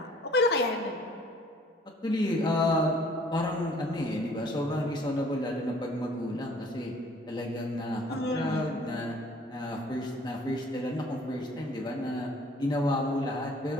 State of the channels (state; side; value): normal; both; correlation 0.56